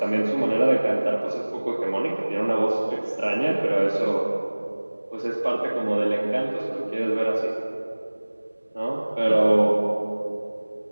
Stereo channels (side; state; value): both; inverted; correlation -1.00